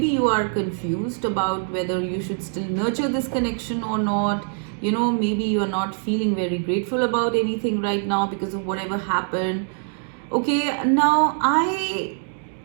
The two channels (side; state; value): left; silent; 55 dB below the other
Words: you are confused about whether you should still nurture this connection or not. Maybe you are not feeling very grateful about anything right now because of whatever happened. Okay, now I